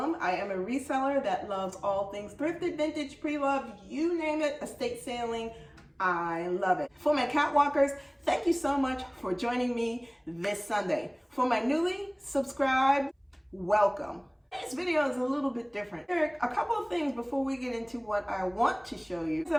I am a reseller that loves all things thrifted, vintage, pre-loved, you name it, estate sailing. I love it. For my catwalkers, thank you so much for joining me this Sunday. For my newly subscribed, welcome. This video is a little bit different. There are a couple of things before we get into what I want to show you that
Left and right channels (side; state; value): both; identical; correlation 1.00